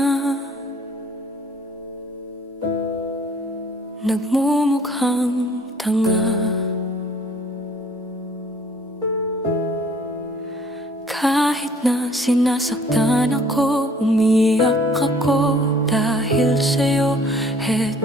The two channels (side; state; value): both; normal; correlation 0.56